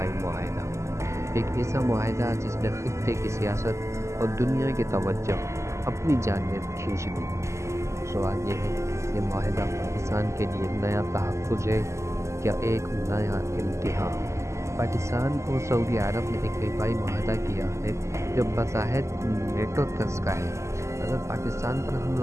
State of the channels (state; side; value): late; left; 0.14 ms